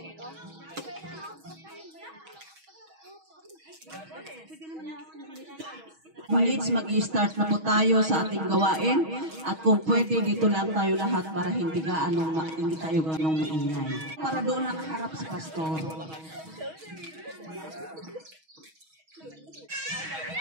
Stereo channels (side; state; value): left; late; 6.3 ms